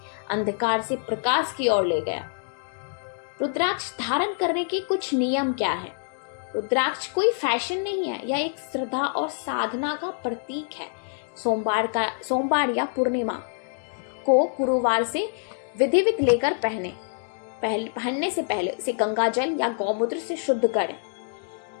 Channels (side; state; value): right; silent; digital silence